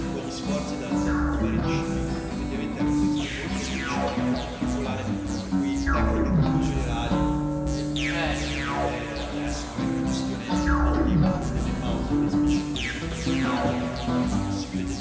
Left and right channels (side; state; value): both; identical; correlation 1.00